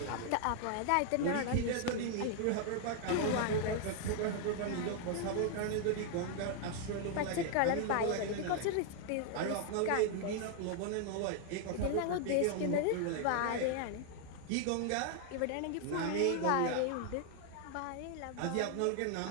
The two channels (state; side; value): different; both; correlation 0.00